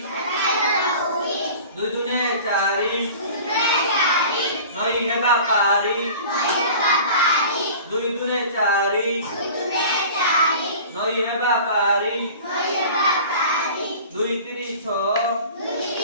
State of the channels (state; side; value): inverted; both; correlation -0.41